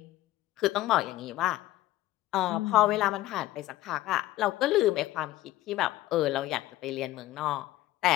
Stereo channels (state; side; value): quieter; right; 15.8 dB